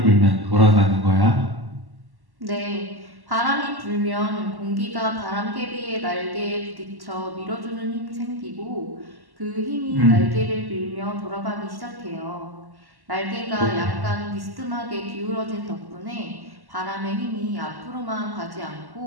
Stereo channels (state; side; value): late; left; 1.1 ms